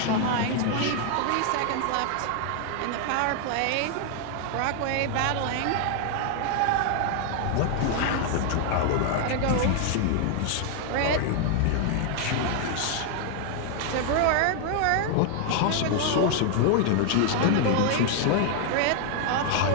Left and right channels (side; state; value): both; different; correlation 0.00